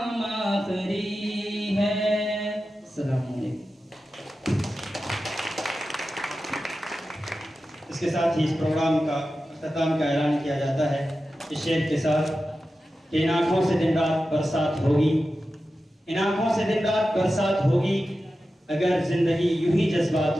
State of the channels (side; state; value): both; normal; correlation 0.93